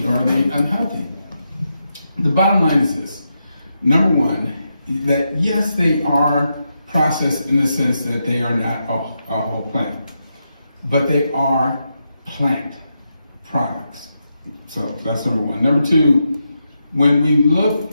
or are they unhealthy? The bottom line is this. Number one, that yes, they are processed in the sense that they are not a whole plant, but they are plant products. So that's number one. Number two, when we look,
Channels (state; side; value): inverted; both; correlation -0.85